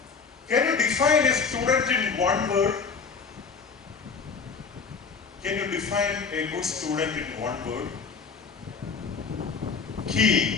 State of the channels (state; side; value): quieter; right; 5.3 dB